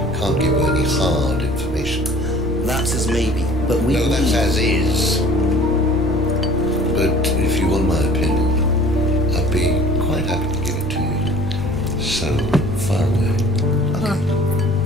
can't give you any hard information. That's as maybe, but we No, that's as is. But if you want my opinion, I'd be quite happy to give it to you. So far away. Okay.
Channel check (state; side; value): normal; both; correlation 0.49